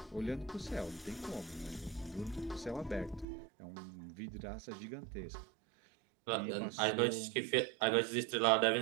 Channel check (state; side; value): drops out; left; at 3.2 s